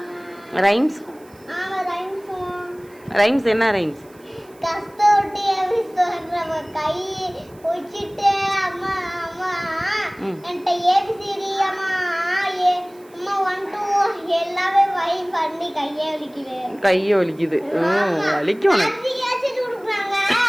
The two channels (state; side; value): noise; right; hiss, 29 dB below the sound